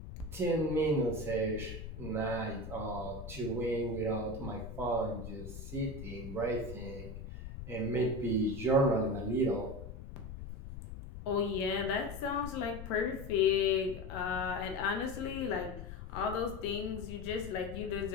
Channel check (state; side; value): noise; left; rumble, 10 dB below the sound